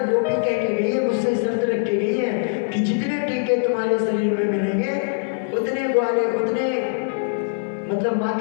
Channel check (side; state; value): right; silent; digital silence